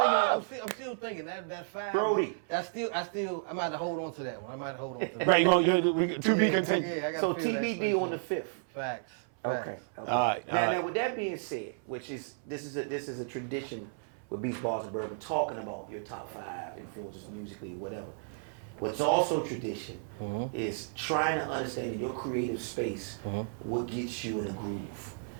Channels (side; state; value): left; silent; 56 dB below the other